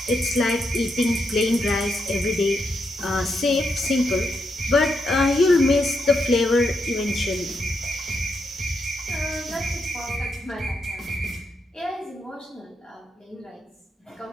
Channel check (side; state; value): both; normal; correlation 0.82